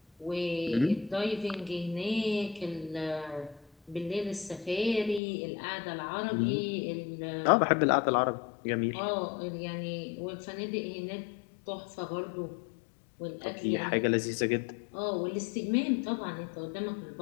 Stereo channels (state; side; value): drops out; right; at 5.2 s